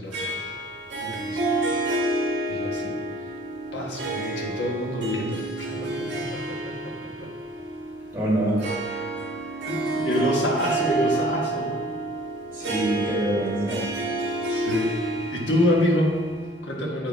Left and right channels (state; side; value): normal; both; correlation 0.52